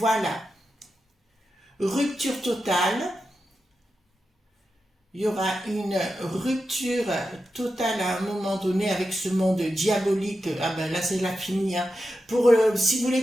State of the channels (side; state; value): both; normal; correlation 0.90